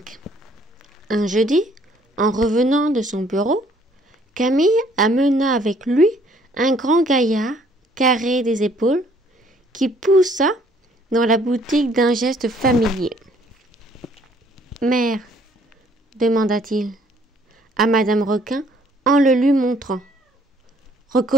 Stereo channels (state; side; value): normal; both; correlation 0.61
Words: Un jeudi, en revenant de son bureau, Camille amena avec lui un grand gaillard, carré des épaules, qui poussa dans la boutique d'un geste familier. « Mère, demanda-t-il à Madame Requin en le lui montrant.